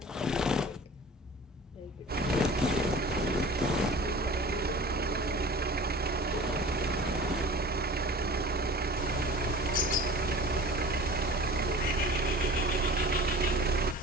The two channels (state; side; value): normal; both; correlation 0.41